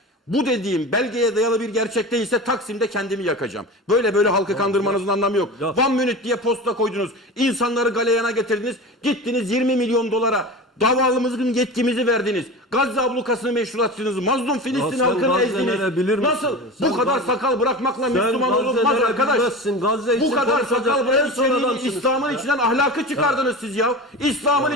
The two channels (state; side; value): normal; both; correlation 0.30